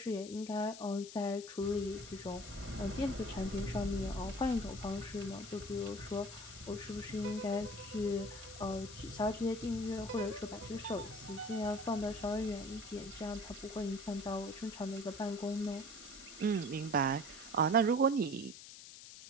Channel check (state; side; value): noise; left; hiss, 14 dB below the sound